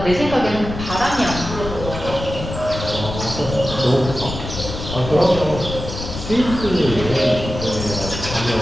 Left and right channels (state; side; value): noise; left; rumble, 8 dB below the sound